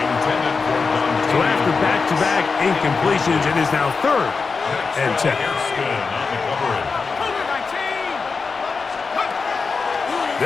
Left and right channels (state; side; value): quieter; right; 4.7 dB